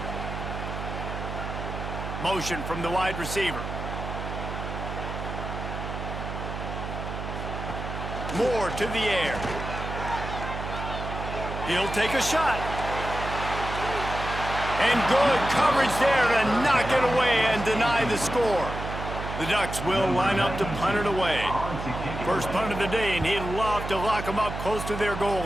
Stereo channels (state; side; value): noise; right; hum, 6 dB below the sound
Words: Motion from the wide receiver. Moore to the air. He'll take a shot. And good coverage there to knock it away and deny the score. The Ducks will line up to punt it away. First punt of the day, and he'd love to lock them up close to their goal